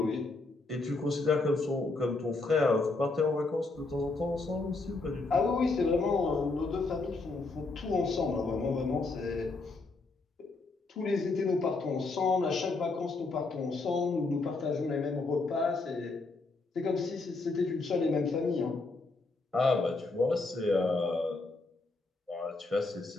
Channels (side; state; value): right; quieter; 3.5 dB